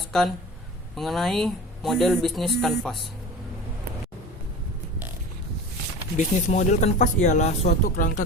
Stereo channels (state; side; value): normal; both; correlation 0.35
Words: mengenai model bisnis kanvas. Bisnis model kanvas ialah suatu kerangka